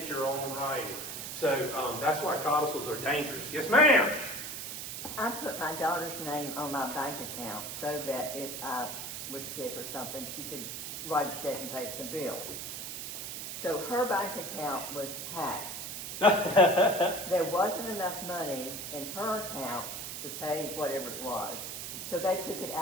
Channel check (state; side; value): noise; right; hiss, 6 dB below the sound